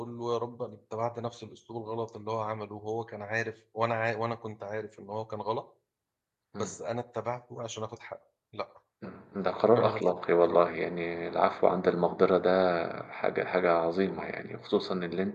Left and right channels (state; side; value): identical; both; correlation 1.00